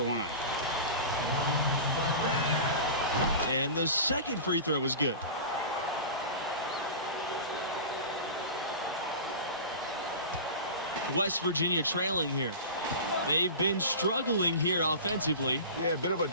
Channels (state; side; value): inverted; both; correlation -0.32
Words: line. And the second free throw was good. West Virginia trailing here. They've been struggling here offensively. Yeah, a bit of a